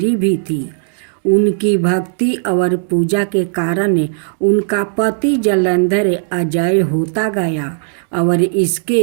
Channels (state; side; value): silent; left; digital silence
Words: भी थी। उनकी भक्ति और पूजा के कारण उनका पति जलंधर अजय होता गया और